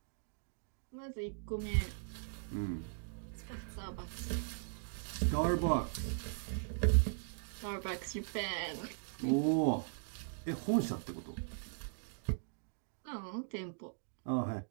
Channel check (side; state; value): left; silent; digital silence